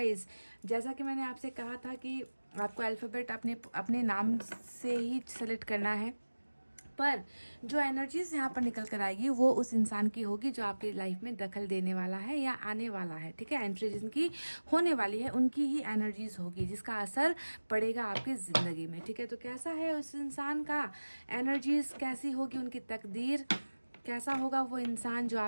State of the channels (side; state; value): both; inverted; correlation -1.00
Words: जैसा कि मैंने आपसे कहा था कि आपको अल्फ़ाबेट अपने नाम से ही सेलेक्ट करना है, पर जो एनर्जीज यहाँ पर निकल कर आएगी वो उस इंसान की होगी जो आपकी लाइफ में दखल देने वाला है या आने वाला है, ठीक है। एंट्री जिनकी होने वाली है उनकी ही एनर्जीज होगी जिसका असर पड़ेगा आपकी ज़िंदगी में, ठीक है। तो कैसा है उस इंसान का एनर्जीज, कैसी होगी उनकी तकदीर, कैसा होगा वो इंसान जो